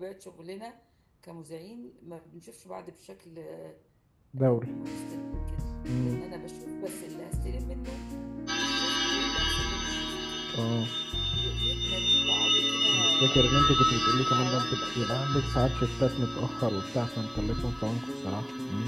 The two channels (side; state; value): both; identical; correlation 1.00